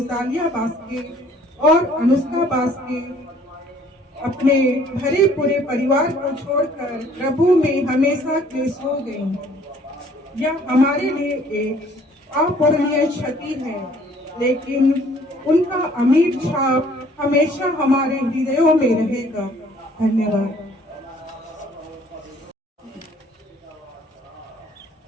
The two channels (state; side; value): normal; both; correlation 0.58